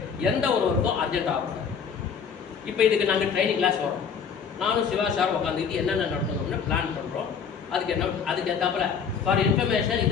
எந்த ஒரு ஒர்க்கும் அர்ஜென்ட் ஆகும். இப்போ இதுக்கு நாங்கள் ட்ரைனிங் கிளாஸ் வரோம், நானும் சிவா சார் உட்காந்துக்கிட்டு என்னென்ன நடத்தணும்னு பிளான் பண்ணுறோம். அதுக்கு ஏற்றாப்புல ஃபார் இன்ஃபர்மேஷன்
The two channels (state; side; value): quieter; right; 6.6 dB